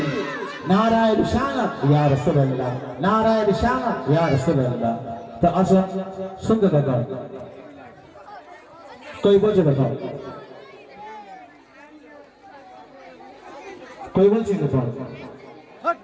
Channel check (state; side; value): identical; both; correlation 1.00